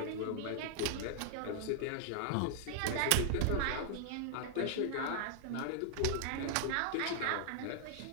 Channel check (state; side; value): different; both; correlation -0.01